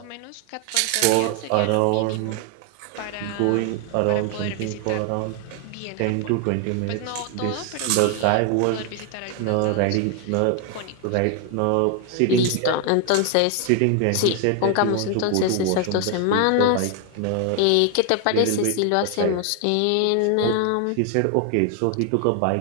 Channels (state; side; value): different; both; correlation 0.00